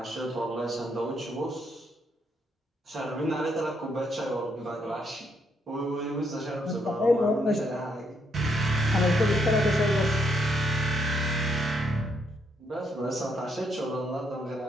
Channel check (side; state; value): both; normal; correlation 0.74